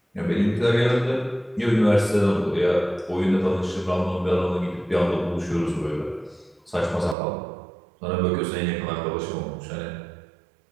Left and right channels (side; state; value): left; drops out; at 7.2 s